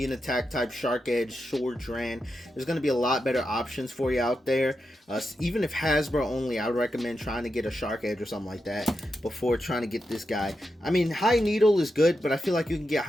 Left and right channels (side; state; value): both; normal; correlation 0.87